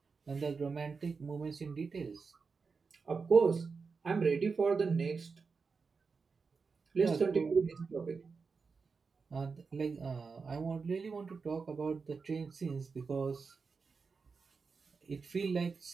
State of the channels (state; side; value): quieter; left; 4.9 dB